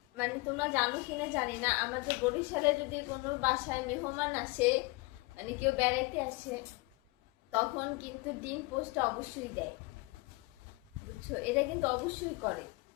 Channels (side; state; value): right; quieter; 24.9 dB